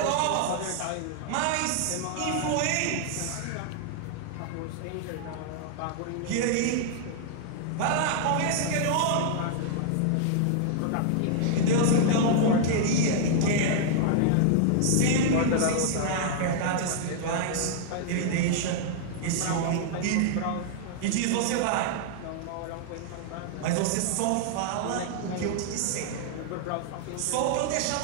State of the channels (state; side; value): different; both; correlation -0.01